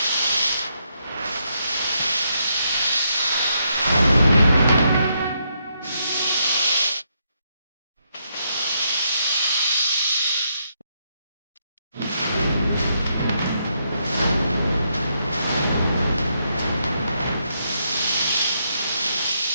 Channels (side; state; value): both; inverted; correlation -0.78